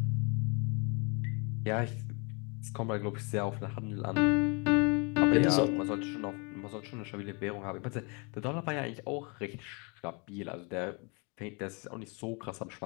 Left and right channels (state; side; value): quieter; right; 32.7 dB